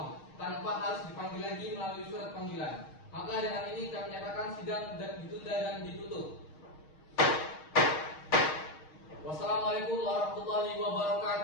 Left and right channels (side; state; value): right; late; 6.4 ms